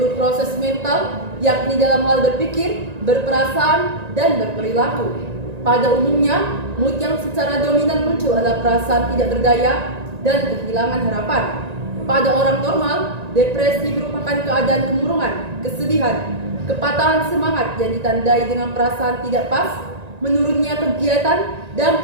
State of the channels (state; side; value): late; left; 1.9 ms